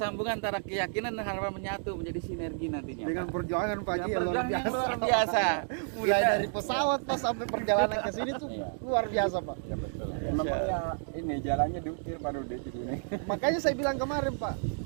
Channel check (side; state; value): left; silent; digital silence